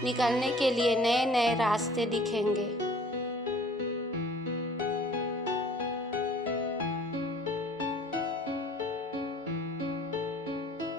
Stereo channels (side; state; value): both; normal; correlation 0.52